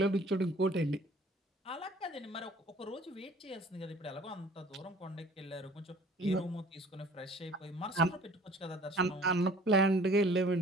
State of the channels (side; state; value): both; normal; correlation 0.51